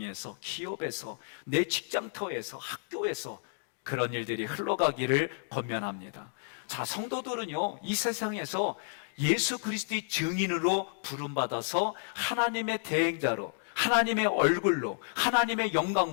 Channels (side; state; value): right; silent; digital silence